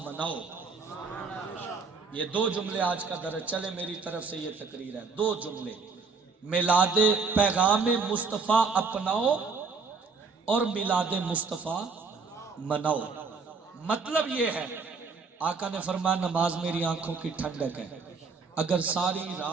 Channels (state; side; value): quieter; left; 4.7 dB